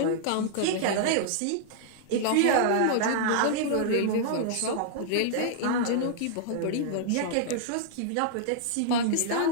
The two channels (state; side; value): different; both; correlation -0.01